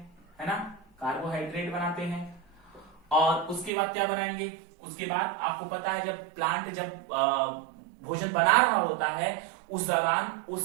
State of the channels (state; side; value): drops out; left; at 3.7 s